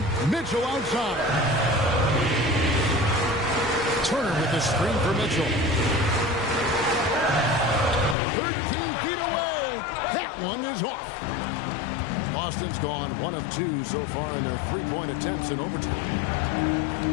Mitchell outside. Turner with the screen for Mitchell. 13 feet away. That one is off. Boston's gone 1 of 2 so far in their 3-point attempts in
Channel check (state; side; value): drops out; right; at 8.2 s